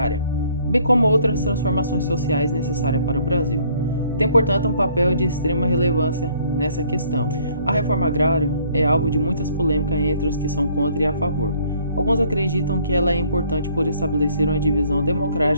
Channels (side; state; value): both; inverted; correlation -0.61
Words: bem como outras transformações sociais necessárias para o Brasil. Tem, portanto, um papel de extrema relevância nessa questão. A reforma agrária é alvo de muitas polêmicas entre os que são contra e a favor. Alguns acreditam que ela é importante por estabelecer uma divisão